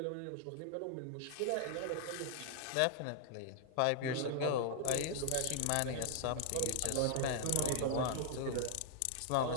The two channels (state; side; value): different; both; correlation -0.01